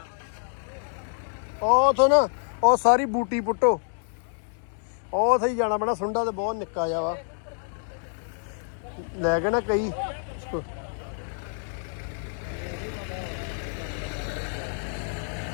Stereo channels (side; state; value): right; silent; 60 dB below the other